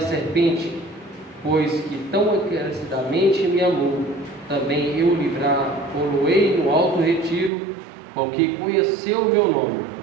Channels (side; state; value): left; drops out; at 7.5 s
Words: pois que tão encarecidamente me amou, também eu livrar-o-ei no alto retiro, com que conheceu o meu nome.